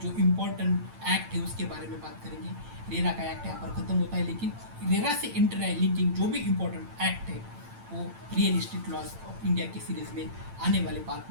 जो इम्पोर्टेंट एक्ट है उसके बारे में बात करेंगे। रेरा का एक्ट यहाँ पर ख़त्म होता है, लेकिन रेरा से इंटर लिंकिंग जो भी इम्पोर्टेंट एक्ट है वो real estate laws of India की सीरीज़ में आने वाले पार्ट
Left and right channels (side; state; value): left; late; 8.9 ms